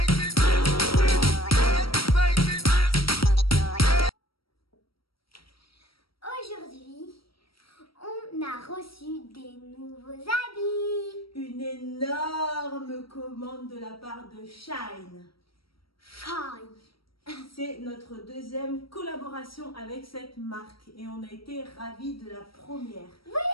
Aujourd'hui, on a reçu des nouveaux habits. Une énorme commande de la part de Shine. Shine. C'est notre deuxième collaboration avec cette marque et on a été ravis de la première. Oui,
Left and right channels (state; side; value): late; right; 0.75 ms